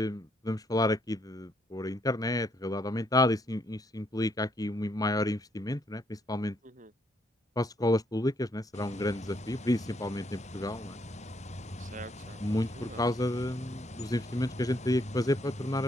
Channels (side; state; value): both; normal; correlation 0.72